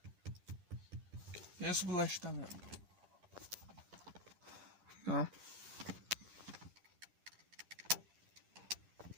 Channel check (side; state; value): left; late; 10 ms